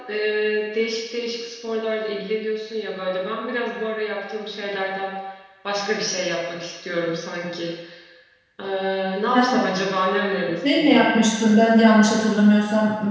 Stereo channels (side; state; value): both; identical; correlation 1.00